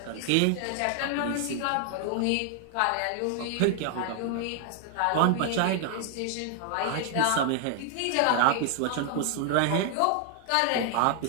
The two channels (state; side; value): different; both; correlation 0.00